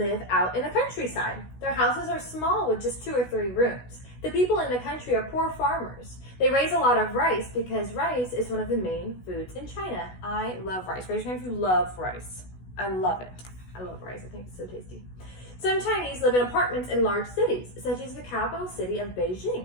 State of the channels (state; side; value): late; right; 16 ms